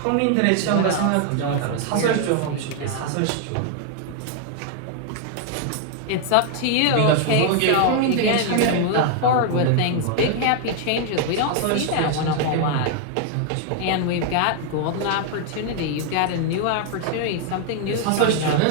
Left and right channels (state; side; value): different; both; correlation 0.00